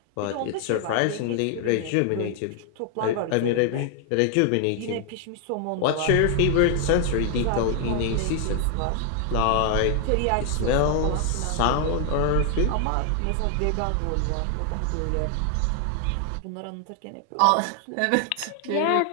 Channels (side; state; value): both; different; correlation 0.00